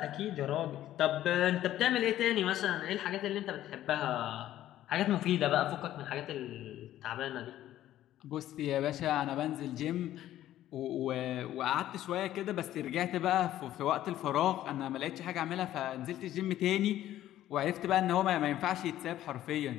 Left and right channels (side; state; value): right; quieter; 13.1 dB